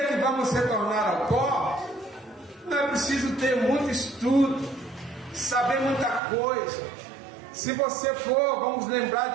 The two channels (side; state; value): left; drops out; at 6.2 s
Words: que vamos retornar ao pó, não é preciso ter muito estudo, saber muita coisa. Se você for, vamos lembrar